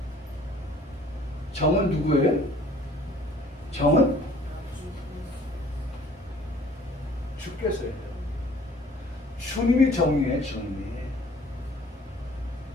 정은 누구예요? 정은 주께서요. 주님이 정이에요. 주님이.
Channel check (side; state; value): both; normal; correlation 0.54